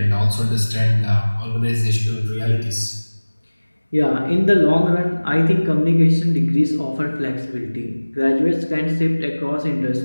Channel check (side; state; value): both; inverted; correlation -1.00